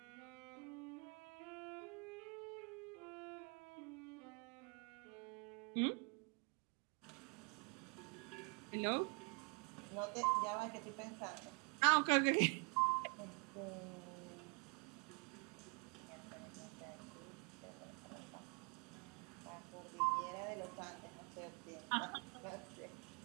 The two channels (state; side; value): quieter; left; 34.3 dB